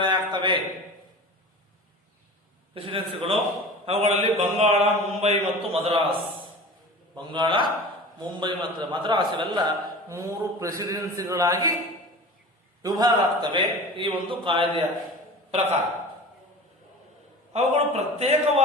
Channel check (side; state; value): both; normal; correlation 0.36